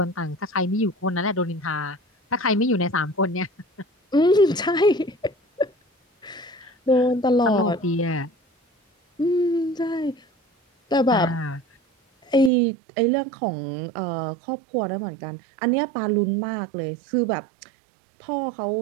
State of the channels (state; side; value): drops out; left; at 12.5 s